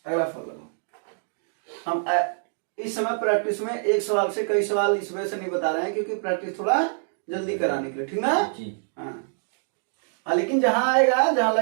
अगला फॉल लगाओ। हम इस समय प्रैक्टिस में एक सवाल से कई सवाल इस वजह से नहीं बता रहे हैं क्योंकि प्रैक्टिस थोड़ा जल्दी कराने के लिए, ठीक ना। हाँ लेकिन जहां आएगा, जहां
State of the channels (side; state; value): left; silent; digital silence